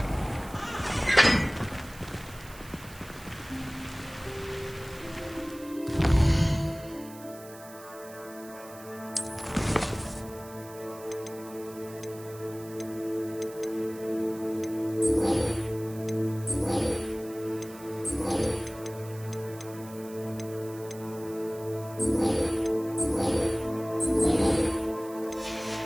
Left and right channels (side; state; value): right; noise; hiss, 19 dB below the sound